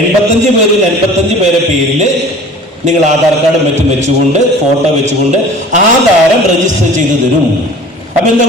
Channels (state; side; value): normal; both; correlation 0.44